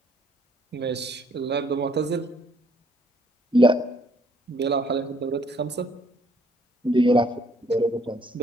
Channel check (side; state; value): both; normal; correlation 0.64